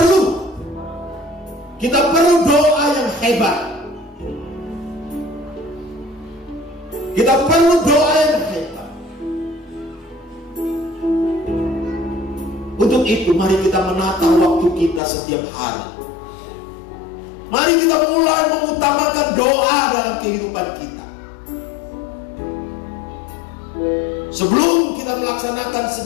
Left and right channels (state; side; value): drops out; right; at 15.0 s